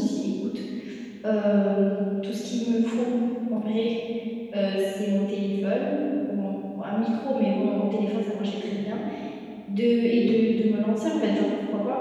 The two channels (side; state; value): both; identical; correlation 1.00